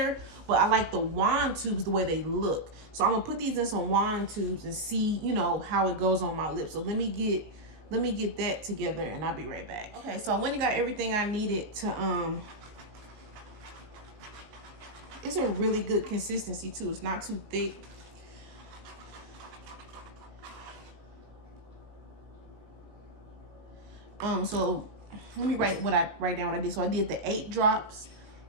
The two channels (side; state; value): left; late; 19 ms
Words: but I like the wand tubes the way they look. So I'm gonna put these in some wand tubes and see, you know, how it goes on my lips. So let me get that together and I'll be right back. Okay, so I went and got everything I needed to it's a really good consistency too. It's not too thick. So let me write down what I did. So I did the 8 drops